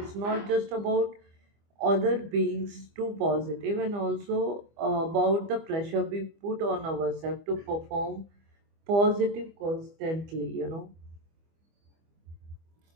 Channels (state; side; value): late; left; 25 ms